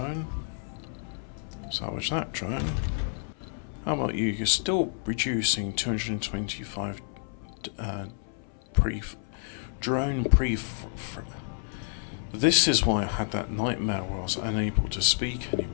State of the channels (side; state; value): right; silent; 58 dB below the other